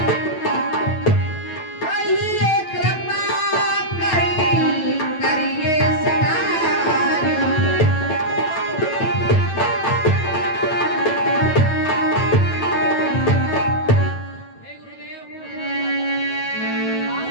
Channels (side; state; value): right; late; 9.1 ms